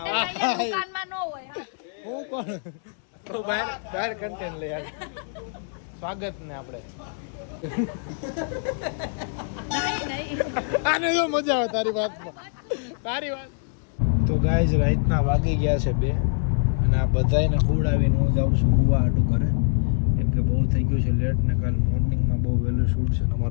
દુકાનમાં નો હોય હા. હું કોણ તો બહાર કન્ટેન્ટ લઈ આવે સ્વાગત ને આપણે નહીં નહીં આને જો મજા આવે તારી વાત તો ગાઈઝ રાતના વાગી ગયા છે 2 અને આ બધાયને ખવડાવીને હું જાઉં છું હુવા હાટું કરે કેમ કે બહુ થઈ ગયું છે લેટ ને કાલ મોર્નિંગમાં બહુ વહેલું શૂટ છે ને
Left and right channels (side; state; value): right; silent; 62 dB below the other